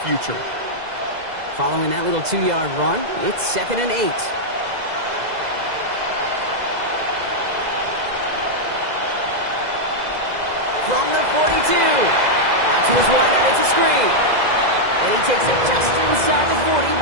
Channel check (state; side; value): late; left; 2.0 ms